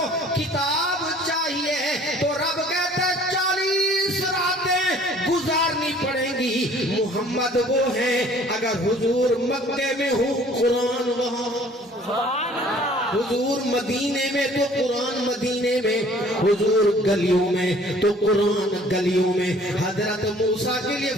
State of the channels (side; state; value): both; normal; correlation 0.54